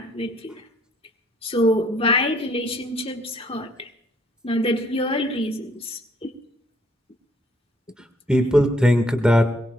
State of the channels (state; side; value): normal; both; correlation 0.66